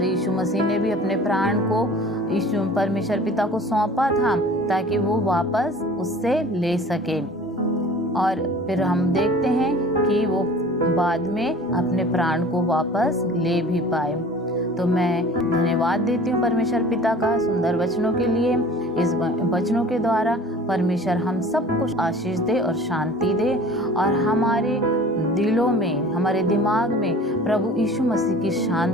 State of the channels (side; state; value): both; normal; correlation 0.45